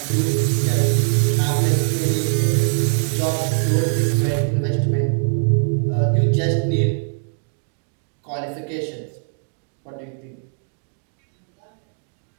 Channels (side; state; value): left; silent; digital silence